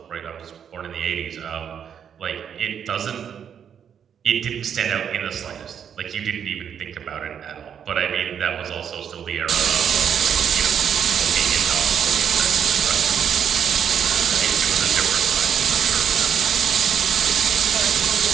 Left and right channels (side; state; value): left; quieter; 8.2 dB